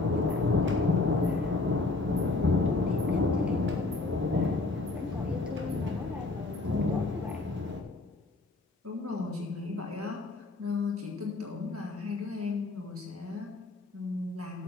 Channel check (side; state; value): right; quieter; 3.4 dB